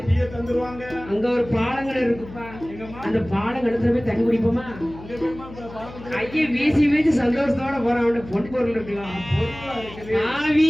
அங்க ஒரு பாலங்கள் இருக்குப்பா அந்த பாலங்கடத்துல போய் தண்ணி குடிப்போமா கையை வீசி வீசி சந்தோஷத்தோட போறான் அவன பொன் பொருள் இருக்கலாம்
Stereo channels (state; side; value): noise; left; hum, 16 dB below the sound